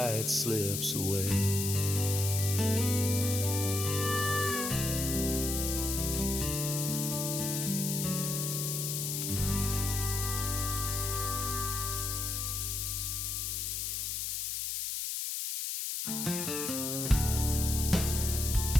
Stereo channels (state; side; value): noise; left; hiss, 2 dB below the sound